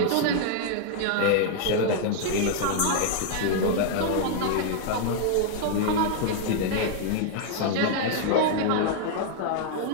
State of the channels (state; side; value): different; both; correlation 0.00